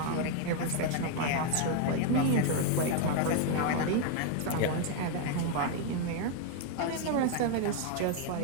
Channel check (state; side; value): different; both; correlation 0.01